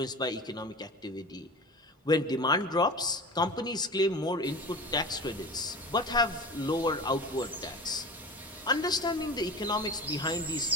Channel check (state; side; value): normal; both; correlation 0.33